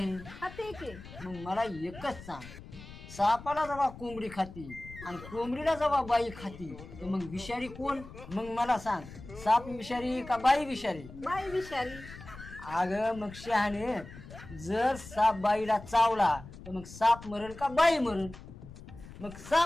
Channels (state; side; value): noise; left; rumble, 16 dB below the sound